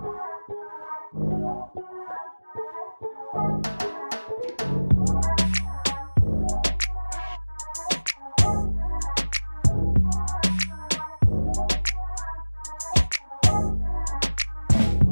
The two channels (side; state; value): both; inverted; correlation -1.00